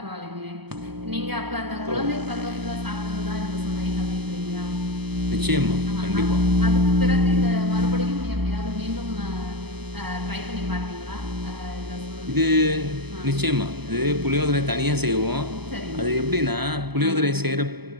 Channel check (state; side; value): late; left; 0.98 ms